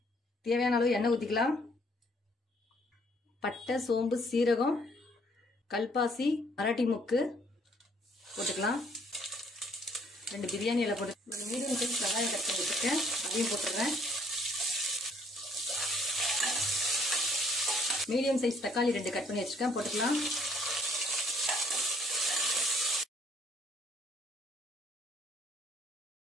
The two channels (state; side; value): normal; both; correlation 0.63